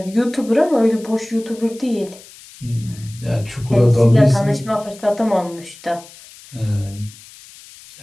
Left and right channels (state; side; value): noise; left; hiss, 21 dB below the sound